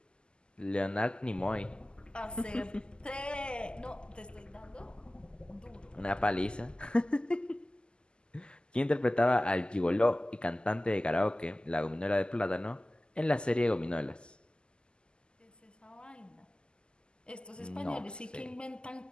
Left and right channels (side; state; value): right; late; 0.048 ms